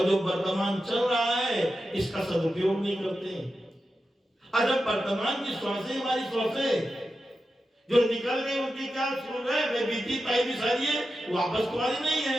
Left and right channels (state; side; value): normal; both; correlation 0.91